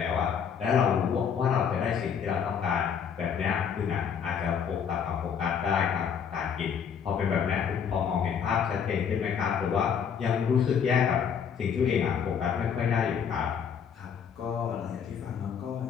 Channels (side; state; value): right; quieter; 7.4 dB